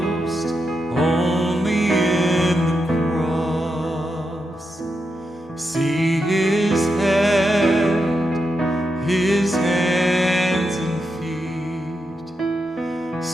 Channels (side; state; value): both; normal; correlation 0.85